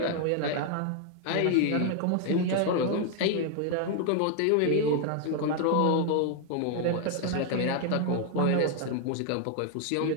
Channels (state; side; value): different; both; correlation 0.00